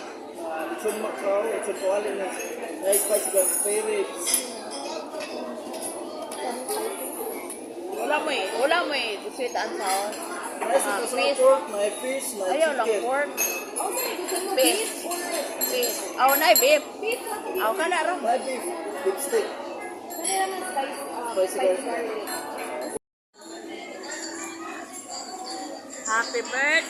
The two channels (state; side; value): identical; both; correlation 1.00